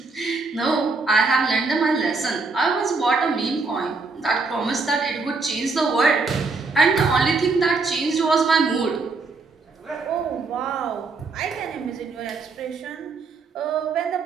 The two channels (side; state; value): left; quieter; 4.0 dB